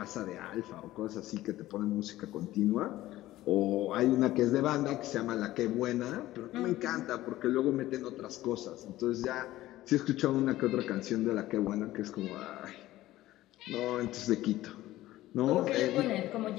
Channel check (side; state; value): right; quieter; 15.8 dB